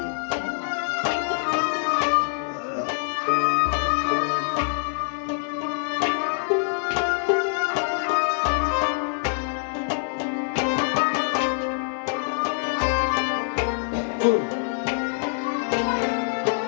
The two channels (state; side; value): silent; right; 62 dB below the other